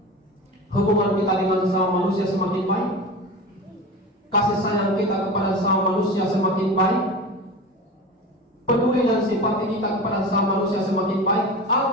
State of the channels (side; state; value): both; normal; correlation 0.31